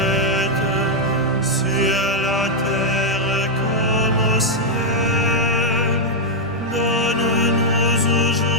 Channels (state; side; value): normal; both; correlation -0.01